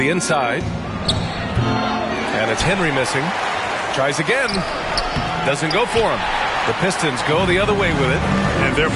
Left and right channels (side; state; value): both; identical; correlation 1.00